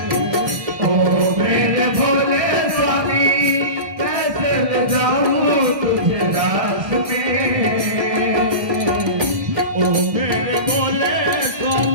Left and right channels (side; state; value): left; late; 1.6 ms